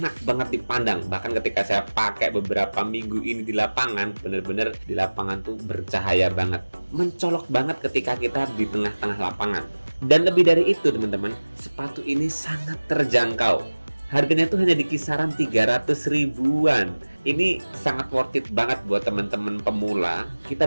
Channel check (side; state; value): both; inverted; correlation -1.00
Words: banget dipandang. Bahkan ketika saya pakai beberapa minggu ini di lapangan, bener-bener di lapangan tuh bercahaya banget, mencolok banget ketika kita di tengah-tengah lapangan. Dan lebih dari itu teman-teman, sepatu ini sangat terjangkau. Harganya tuh hanya di kisaran 300 ribuan. Ini sangat worth it banget buat teman-teman pemula. Kita